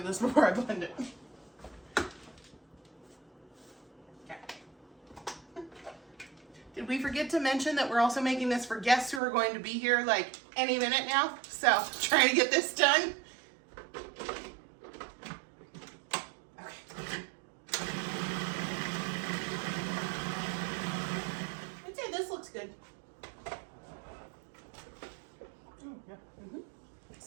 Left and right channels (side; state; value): left; drops out; at 9.2 s